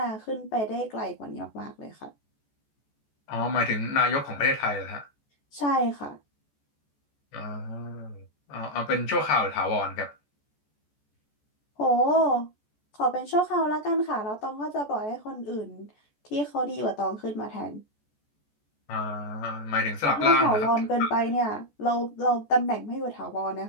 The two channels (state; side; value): late; right; 14 ms